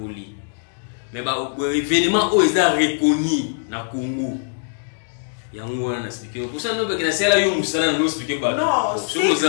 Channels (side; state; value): right; silent; digital silence